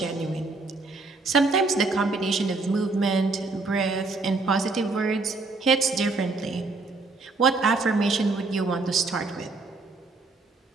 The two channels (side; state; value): left; quieter; 3.7 dB